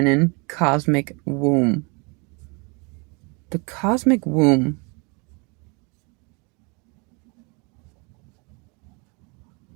cosmic womb. The cosmic womb.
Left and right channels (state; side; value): quieter; left; 31.0 dB